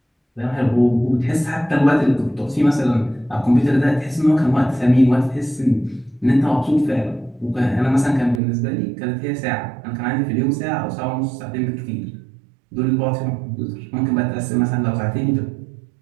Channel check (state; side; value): drops out; left; at 8.4 s